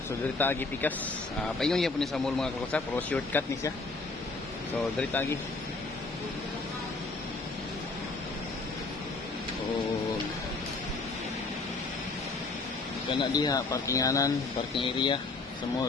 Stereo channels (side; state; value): right; quieter; 3.6 dB